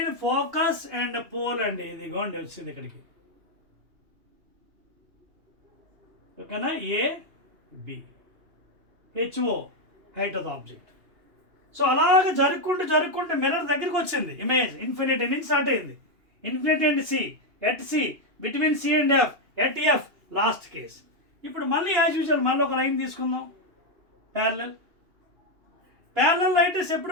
focus and pole అండి. ఇదిగోండి వచ్చింది ఇక్కడికి. ఓకేనా? A B, H O height of the object. So అలాగ జరుపుకుంటూ మిర్రర్ దగ్గరికి వచ్చింది ఇమేజ్. ఇన్ఫినిటీ నుంచి స్టార్ట్ అయింది. Infinity and C, at C, between C and F, at F, last case. ఇప్పుడు మళ్ళీ యాజ్ యూజువల్ మళ్ళీ ఒక లైన్ తీసుకుందాం, ప్యారలల్. ప్యారలల్ లైట్ రేస్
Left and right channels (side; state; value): left; late; 2.8 ms